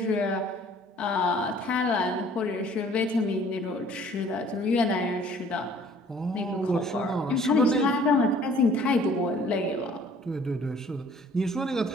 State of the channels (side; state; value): both; normal; correlation 0.55